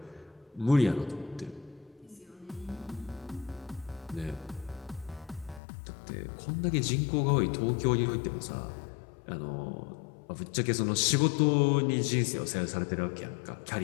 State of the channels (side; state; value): right; drops out; at 5.6 s